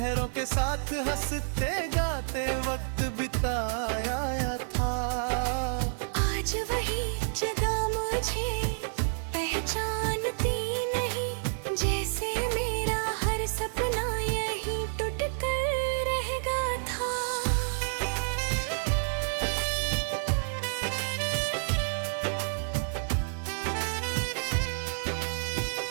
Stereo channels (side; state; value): left; silent; 58 dB below the other